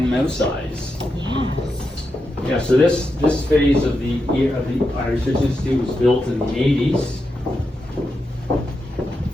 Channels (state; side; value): normal; both; correlation 0.87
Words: mouse size. Yeah. So this phase of the Irish Research Institute was built in the 80s.